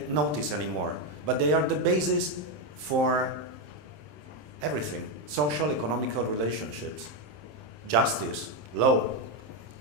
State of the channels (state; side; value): late; left; 27 ms